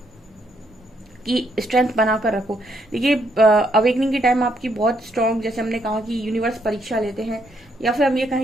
कि स्ट्रेंथ बनाकर रखो। देखिए अवेकनिंग के टाइम आपकी बहुत स्ट्रांग, जैसे हमने कहा कि यूनिवर्स परीक्षा लेते हैं, या फिर हम ये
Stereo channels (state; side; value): normal; both; correlation 0.73